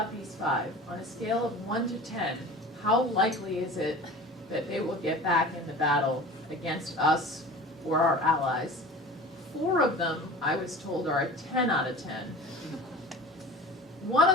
these 5. On a scale of 1 to 10, how likely is it that they will get back in the battle against us or our allies? 4 of them, I was told, are a 10 out of 10. 1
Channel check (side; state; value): both; normal; correlation 0.38